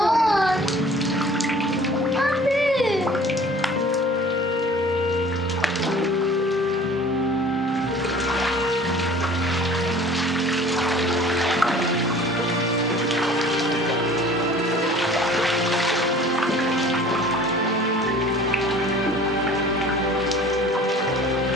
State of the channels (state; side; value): normal; both; correlation 0.47